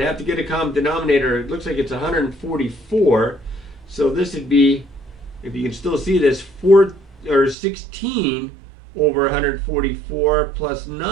to get a common denominator. It looks like it's 144. So this would be, if you can still see this, 16 over 144 plus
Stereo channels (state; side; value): drops out; left; at 7.6 s